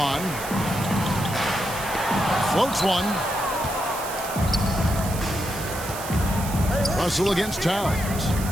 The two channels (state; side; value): noise; right; hiss, 10 dB below the sound